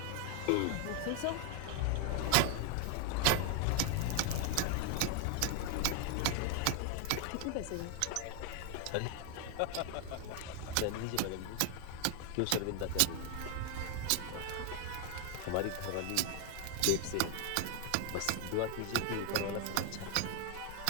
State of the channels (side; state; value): both; different; correlation 0.00